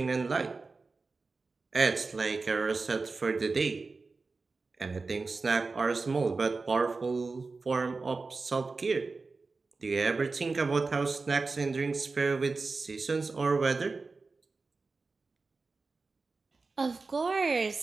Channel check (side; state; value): left; quieter; 4.0 dB